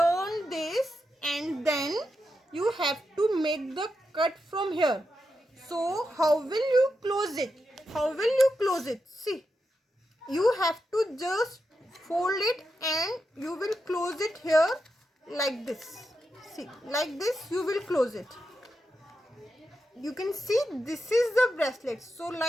this, and then you have to make the cut from here. So how will you close it? How will you close it? See, you have to just fold it and you will close it here like this. See, like this you will close it. You can see this is the bracelet. So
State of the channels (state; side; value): normal; both; correlation 0.87